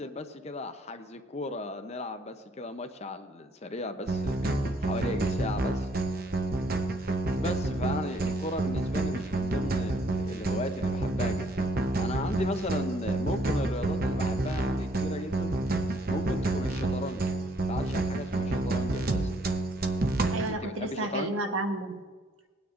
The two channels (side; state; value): both; normal; correlation 0.65